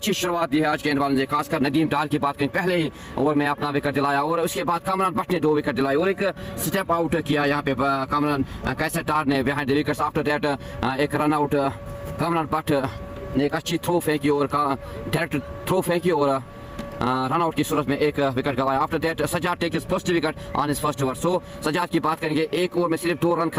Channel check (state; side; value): identical; both; correlation 1.00